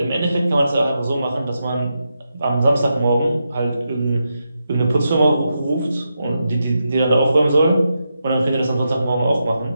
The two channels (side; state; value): both; inverted; correlation -0.86